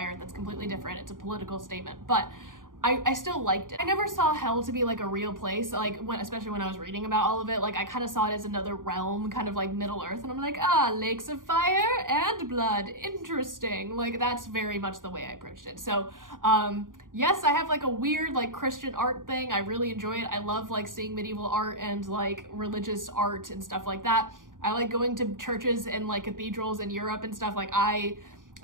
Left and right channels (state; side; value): late; left; 0.89 ms